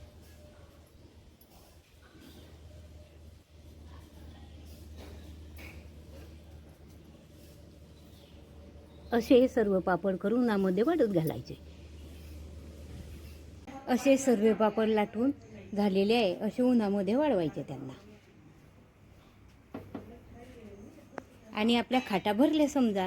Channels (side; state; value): both; identical; correlation 1.00